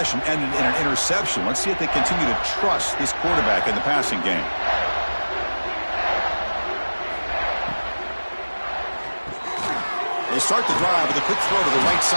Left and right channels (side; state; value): both; inverted; correlation -1.00